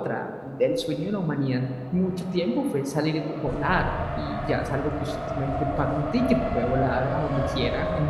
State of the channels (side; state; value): both; identical; correlation 1.00